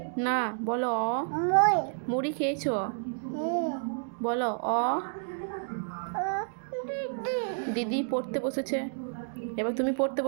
না বলো অ। মুই মুড়ি খেয়েছো? বলো অ। দিদি দিদি পড়তে বসেছে, এবার তুমি পড়তে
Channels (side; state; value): left; silent; digital silence